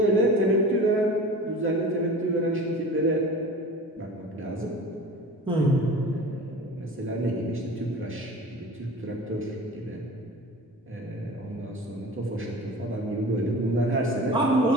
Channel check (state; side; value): normal; both; correlation 0.38